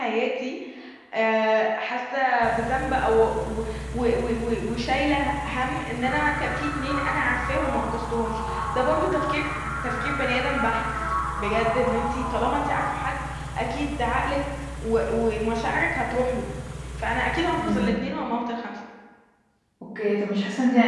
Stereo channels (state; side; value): identical; both; correlation 1.00